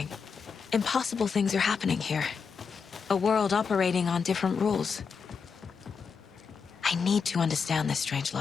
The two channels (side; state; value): right; quieter; 5.8 dB